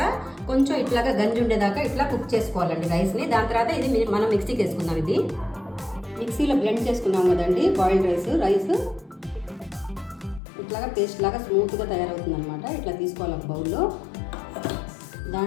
కొంచెం ఇట్లాగా గంజి ఉండేదాకా ఇట్లా కుక్ చేసుకోవాలండి రైస్ని. దాని తర్వాత ఇది మనం మిక్సీకి వేసుకుందాం. ఇది మిక్సీలో బ్లెండ్ చేసుకున్నాం కదండి బాయిల్డ్ రైస్ ఇట్లాగా పేస్ట్ లాగా స్మూత్గా తయారవుతుంది అనమాట. ఇట్లా తీసుకోవాలి ఒక బౌల్లో.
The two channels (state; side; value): drops out; right; at 10.4 s